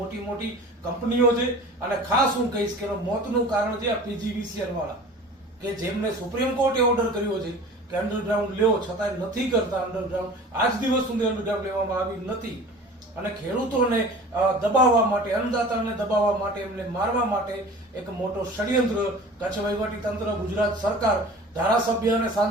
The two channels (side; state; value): both; normal; correlation 0.41